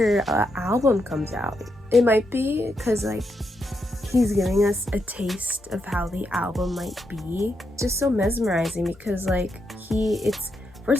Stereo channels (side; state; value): both; normal; correlation 0.82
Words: album comes out. It might be because like he's giving us a taste of how the album might be. It's just so mesmerizing because like it's